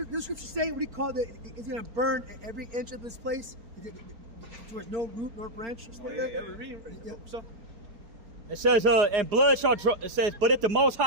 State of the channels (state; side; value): late; left; 4.4 ms